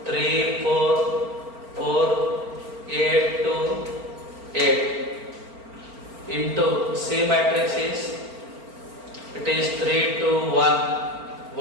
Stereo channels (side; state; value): left; late; 4.4 ms